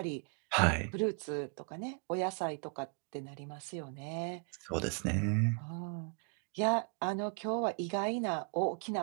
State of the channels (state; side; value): quieter; left; 40.0 dB